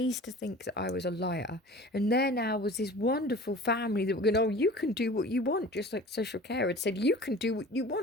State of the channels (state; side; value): normal; both; correlation 0.41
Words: to think that I was a liar. And there now was this wonderful family that were going, oh, you can do what you want, just like social care had said, you can do what you